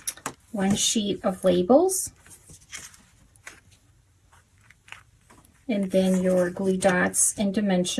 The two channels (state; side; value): identical; both; correlation 1.00